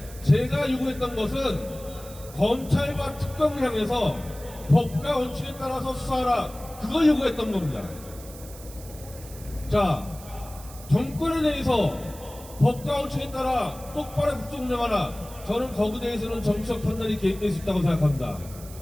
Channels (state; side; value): noise; right; hiss, 18 dB below the sound